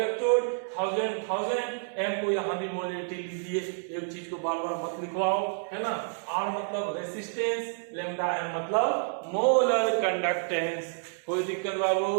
1000 M को यहाँ भी मोलिडिटी लीजिए। एक चीज को बार बार मत लिखवाओ, है ना। आर मतलब रेसिस्टेंस, लैम्डा एम मतलब मोलर कंडक्टेंस। कोई दिक्कत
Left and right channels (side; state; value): left; silent; digital silence